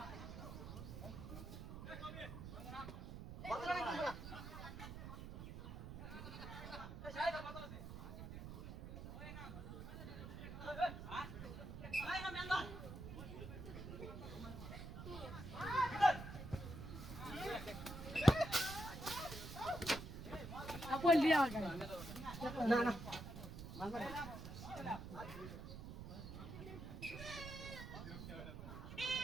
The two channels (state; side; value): noise; right; rumble, 9 dB below the sound